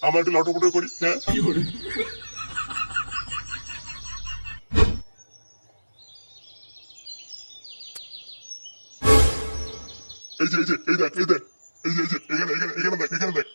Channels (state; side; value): inverted; both; correlation -1.00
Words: আমরা একটু লটপটো করি। হ্যাঁ এই যে এই যে এই দেখ এই দেখ, এই যে এই যে এখানে এখানে এখানে দেখ এখানে দেখ,